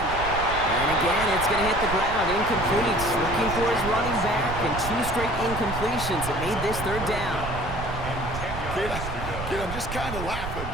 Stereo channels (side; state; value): right; noise; rumble, 7 dB below the sound